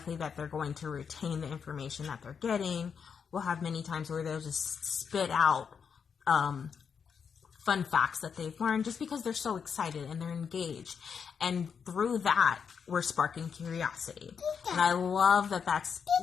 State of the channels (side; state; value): right; quieter; 6.6 dB